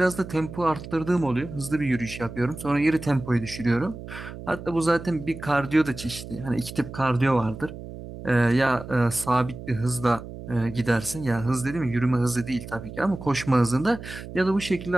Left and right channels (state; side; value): noise; right; hum, 12 dB below the sound